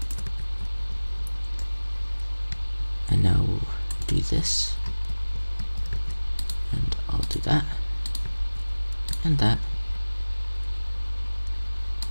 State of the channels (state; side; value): inverted; both; correlation -1.00